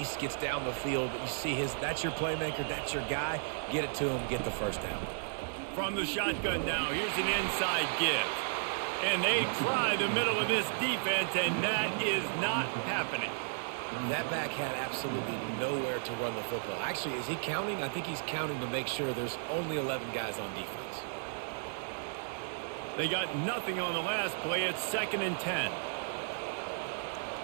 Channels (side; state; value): left; silent; digital silence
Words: gets down the field. But you see that's your playmaker, that's your guy. Get it to him, get the first down. From the shotgun now, here's an inside give. And they try the middle of this defense, and that is not happening. That back had absolutely nowhere to run the football. Actually, is he counting? I think he's counting to make sure there's only 11 guys on defense. They got nothing on the last play. It's 2nd and 10.